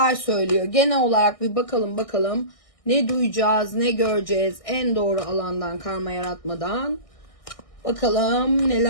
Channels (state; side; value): late; right; 1.6 ms